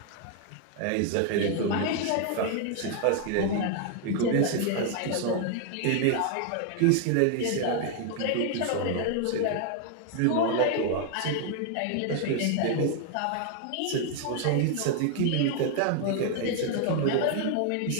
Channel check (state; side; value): different; both; correlation 0.00